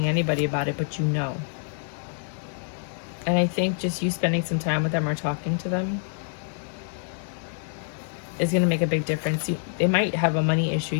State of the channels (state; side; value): silent; right; digital silence